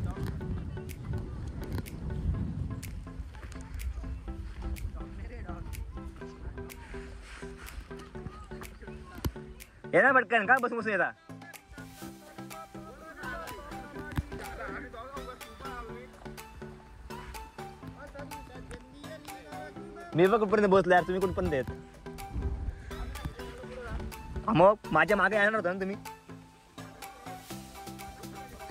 येणार पटकन का बसून येता. मी बघ कुठपर्यंत बसलो यार तुम्ही कुठपर्यंत येत. मग माझ्या मागे येणार होता ना तुम्ही.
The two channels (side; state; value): both; identical; correlation 1.00